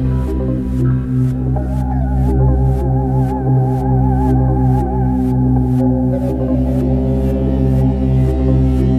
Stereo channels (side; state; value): both; identical; correlation 1.00